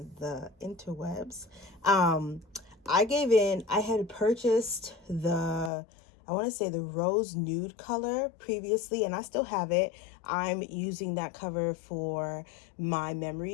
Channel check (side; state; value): right; drops out; at 5.7 s